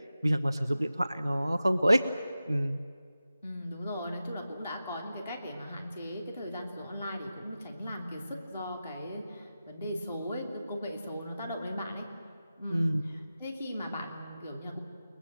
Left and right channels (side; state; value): both; inverted; correlation -0.93